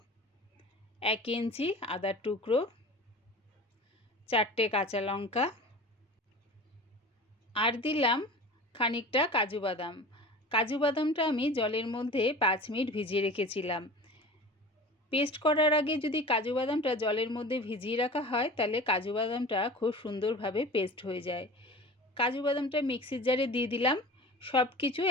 1 ইঞ্চি আদার টুকরো, 4টে কাঁচা লঙ্কা আর দিলাম খানিকটা কাজু বাদাম। কাজু বাদামটা আমি জলের মধ্যে 5 মিনিট ভিজিয়ে রেখেছিলাম। পেস্ট করার আগে যদি কাজু বাদামটা জলের মধ্যে ভিজিয়ে রাখা হয়, তাহলে কাজু বাদামটা খুব সুন্দরভাবে পেস্ট হয়ে যায়। কাজু বাদামটা মিক্সির জারে দিয়ে দিলাম, সব কিছু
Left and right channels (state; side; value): normal; both; correlation 0.37